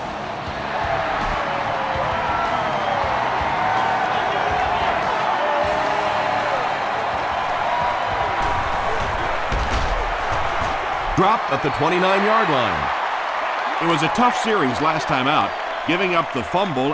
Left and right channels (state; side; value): identical; both; correlation 1.00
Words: Dropped at the 29-yard line. It was a tough series last time out, giving up the